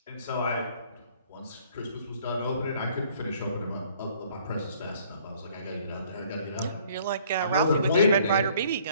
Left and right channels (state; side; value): inverted; both; correlation -0.58